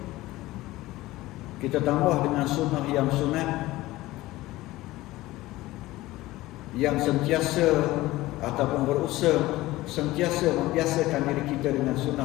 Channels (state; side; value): quieter; right; 17.9 dB